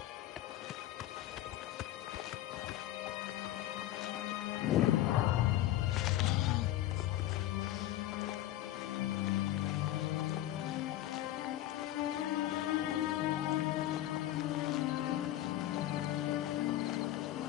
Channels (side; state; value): right; quieter; 14.1 dB